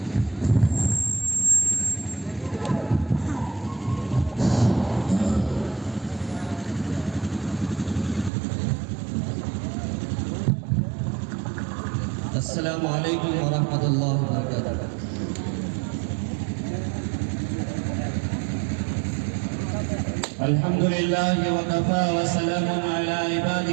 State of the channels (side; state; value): left; drops out; at 8.3 s